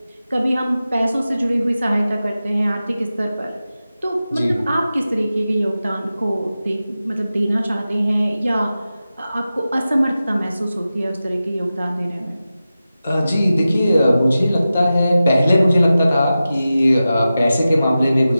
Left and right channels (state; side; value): inverted; both; correlation -0.94